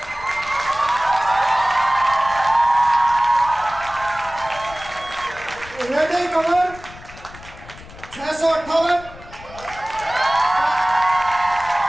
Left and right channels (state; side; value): noise; left; rumble, 18 dB below the sound